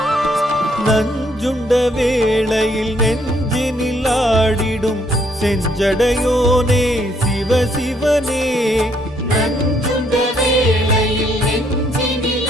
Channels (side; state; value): both; normal; correlation 0.69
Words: நஞ்சுண்ட வேளையில் நெஞ்சினில் ஆடிடும் செஞ்சடையோனே சிவசிவனே நஞ்சுண்ட வேளையில் நெஞ்சினில்